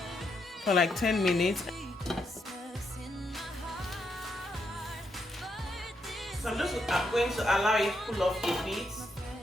for like 10 minutes. So I'm going to allow it to cool off a bit.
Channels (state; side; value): normal; both; correlation 0.79